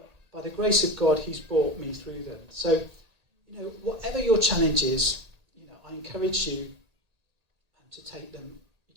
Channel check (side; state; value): left; late; 1.8 ms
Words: by the grace of God, he's brought me through them. So, whatever your challenge is, I encourage you to take them